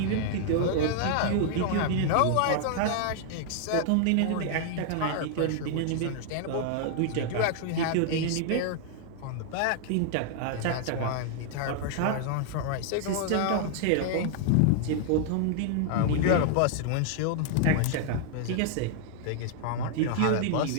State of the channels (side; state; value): both; different; correlation 0.00